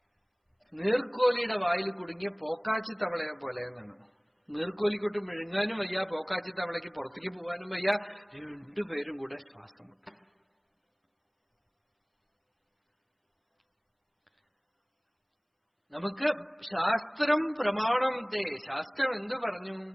നീർക്കോലിയുടെ വായിൽ കുടുങ്ങിയ പോക്കാച്ചി തവളയെ പോലെ എന്നാണ്. നീർക്കോലിക്കൊട്ട് വിഴുങ്ങാനും വയ്യ, പോക്കാച്ചി തവളയ്ക്ക് പുറത്തേക്ക് പോകാനും വയ്യ, രണ്ടുപേരും കൂടെ ശ്വാസം മുട്ടും. നമുക്ക് ശാസ്ത്രം പ്രമാണം ശാസ്ത്രം എന്ത് പറഞ്ഞു?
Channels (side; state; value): both; identical; correlation 1.00